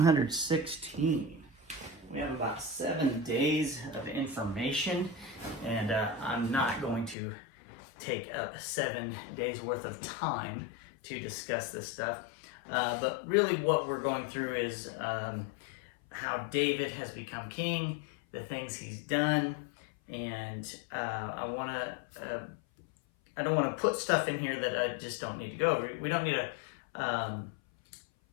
We have about 7 days of information, and I'm not going to take up 7 days worth of time to discuss this stuff. But really what we're going through is how David has become king, the things he's done, and I don't want to put stuff in here that I just don't need to go over. We don't need a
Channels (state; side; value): drops out; right; at 7.2 s